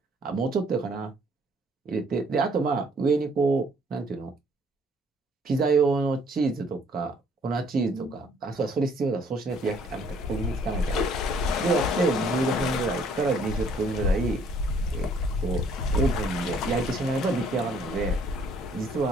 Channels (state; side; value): normal; both; correlation 0.62